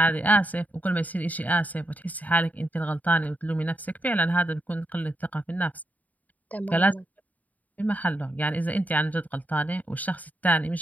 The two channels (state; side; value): late; right; 0.075 ms